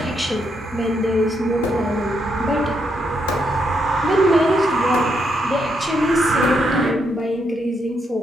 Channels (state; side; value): normal; both; correlation 0.78